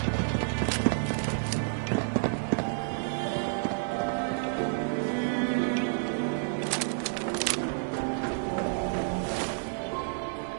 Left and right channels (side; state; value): left; silent; digital silence